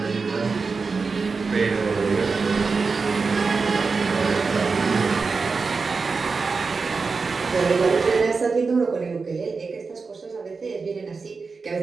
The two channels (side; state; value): left; quieter; 4.6 dB